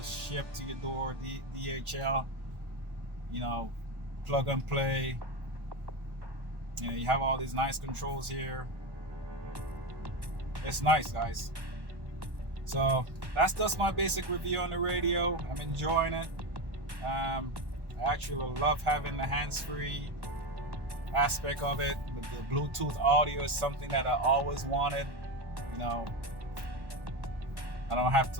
shipped to your door, DHL, you know, plug and play. You know, you have all these nice controls here. It's nice, guys. So that's just my basic review on the radio. I'm enjoying it. I actually love having the hands-free aspect of it. The Bluetooth audio is something that I always wanted. You know, I don't have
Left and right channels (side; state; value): left; late; 1.1 ms